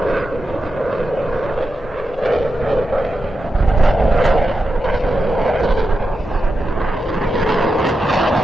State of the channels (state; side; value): normal; both; correlation 0.89